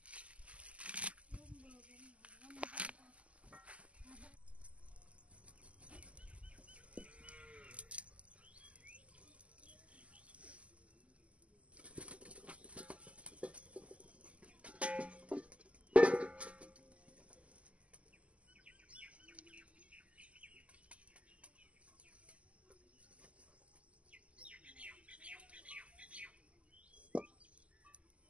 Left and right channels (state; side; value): late; left; 0.064 ms